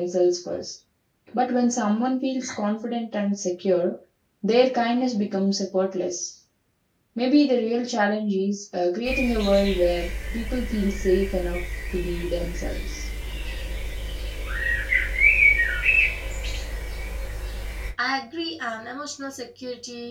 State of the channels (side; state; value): both; identical; correlation 1.00